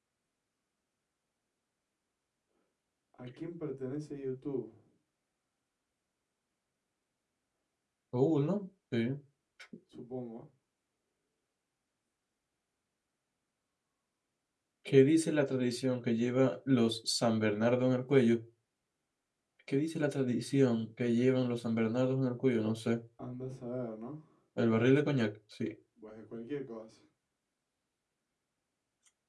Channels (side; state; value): both; identical; correlation 1.00